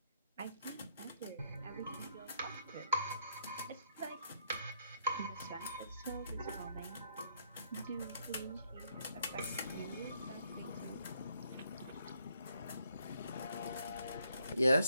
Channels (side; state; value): both; inverted; correlation -0.71